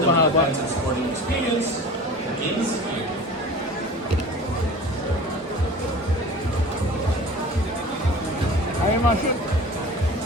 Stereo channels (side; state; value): both; normal; correlation 0.39